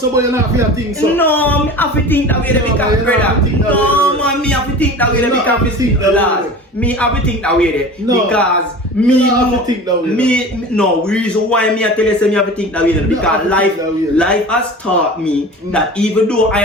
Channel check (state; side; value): normal; both; correlation 0.36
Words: and have to think so. No, me have to think that way because brother. No, man, me have to think that way because me have to think that way because me have to think that way. No, reason why me I tell you say me have to think that way because life has taught me that even though I